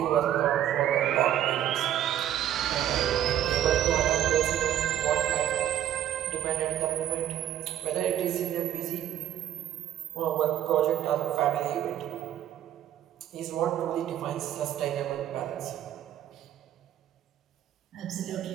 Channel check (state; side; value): quieter; left; 11.5 dB